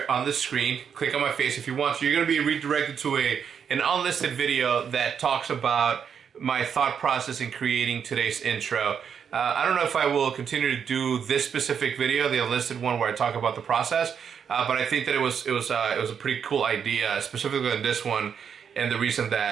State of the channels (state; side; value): quieter; left; 7.4 dB